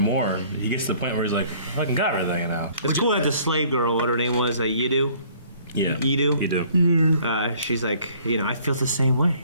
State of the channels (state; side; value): inverted; both; correlation -0.57